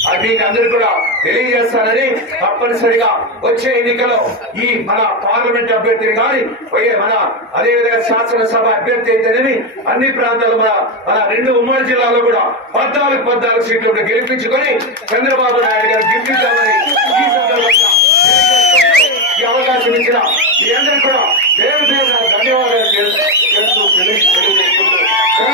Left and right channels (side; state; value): both; normal; correlation 0.10